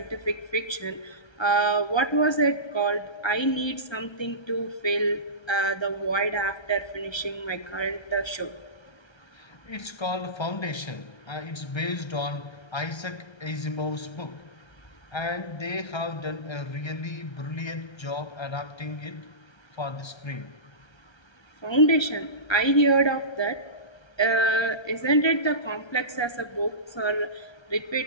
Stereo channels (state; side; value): late; right; 1.3 ms